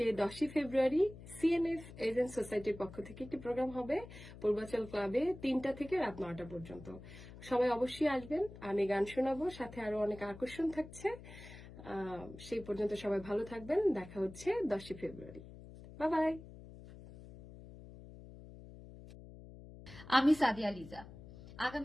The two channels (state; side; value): noise; left; hum, 16 dB below the sound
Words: 10 ফেব্রুয়ারি সিএনএফ এজেন্ট সোসাইটির পক্ষ থেকে একটি প্রোগ্রাম হবে পূর্বাচল ক্লাবে 3টা থেকে রাত 9টা পর্যন্ত। সবাই অবশ্যই আসবেন, আমি গান শোনাবো, সাথে আরো অনেক আকর্ষণ থাকছে। সেই পর্যন্ত সবাই ভালো থাকবেন, দেখা হচ্ছে 10 ফেব্রুয়ারি। Bye bye. আমি সাদিয়া লিজা।